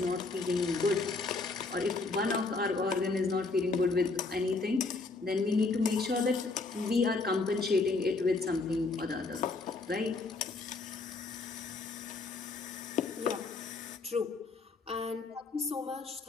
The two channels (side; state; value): right; quieter; 3.8 dB